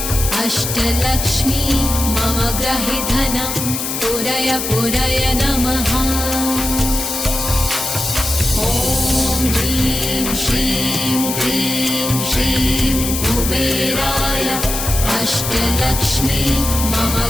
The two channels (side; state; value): left; noise; hiss, 3 dB below the sound